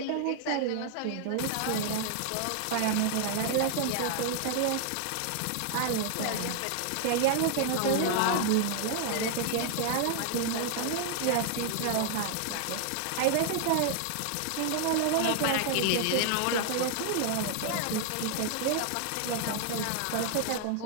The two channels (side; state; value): both; different; correlation 0.00